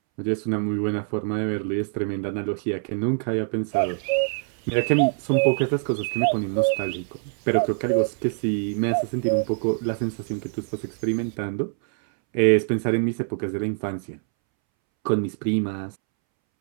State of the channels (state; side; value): silent; left; 62 dB below the other